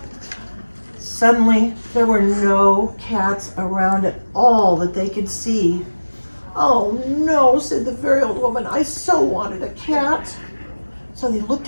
Suddenly, there were no cats around at all that they could see. "Oh no," said the very old woman, "I so wanted a cat." So they looked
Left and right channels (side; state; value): both; inverted; correlation -1.00